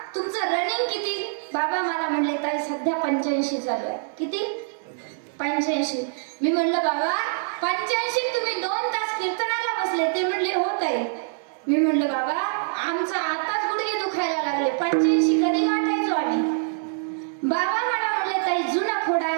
तुमचं रनिंग किती. बाबा मला म्हणले ताई सध्या 85 चालू आहे. किती? 85. मी म्हणलं बाबा 85 तुम्ही 2 तास कीर्तनाला बसले. ते म्हणले हो ताई. मी म्हणलं बाबा आमचा आताच गुडघे दुखायला लागले, 85 कधी गाठायचो आम्ही. बाबा मला म्हणले ताई जुना खोडा आहे,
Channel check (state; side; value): silent; left; 62 dB below the other